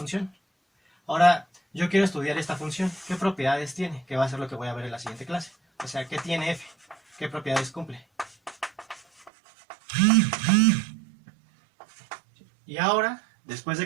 Ahora, yo quiero estudiar esta función. ¿Qué propiedades tiene? Que va a ser lo que voy a ver en la siguiente clase. O sea, ¿qué tiene f? ¿Qué propiedades cumple? Y ahora, después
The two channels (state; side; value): drops out; left; at 9.3 s